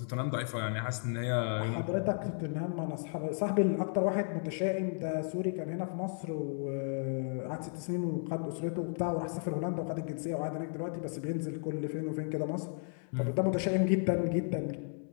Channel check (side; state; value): right; silent; 55 dB below the other